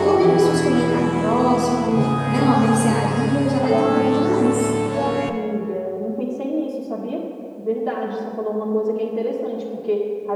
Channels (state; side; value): identical; both; correlation 1.00